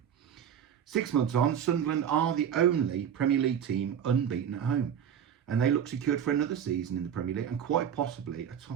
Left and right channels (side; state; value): left; quieter; 8.7 dB